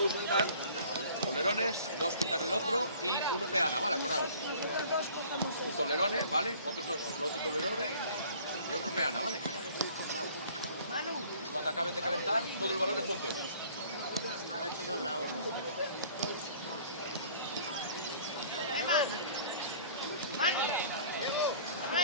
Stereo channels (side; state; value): both; inverted; correlation -0.50